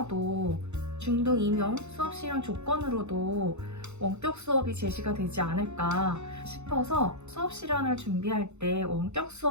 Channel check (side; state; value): left; late; 0.82 ms